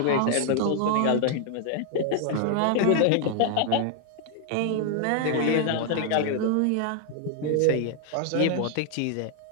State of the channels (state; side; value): different; both; correlation 0.00